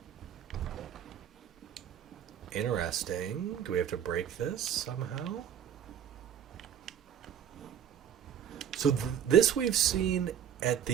Interesting. Do we have to break this somehow? So this we've seen at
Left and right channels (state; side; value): quieter; left; 9.2 dB